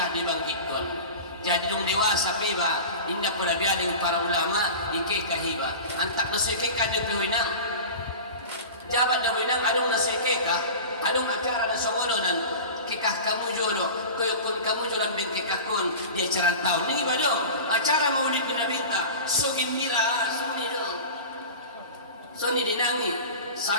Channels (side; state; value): both; inverted; correlation -0.33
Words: dibangkit kon. Jadi dong dewasa piba indah pula bialing para ulama ike kahiba antak nasike ka de pihoinang jabat de pihoinang adong nasike ka adong acara na songononan kikah kamu jolo koyokon kamu jolan beng kikah kon dia acara tahun ni bado acara maulid ni nabinta so gembira so ni dinangi